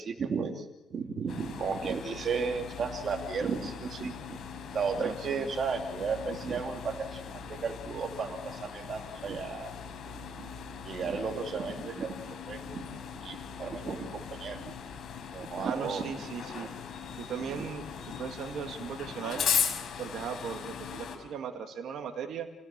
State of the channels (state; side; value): normal; both; correlation 0.67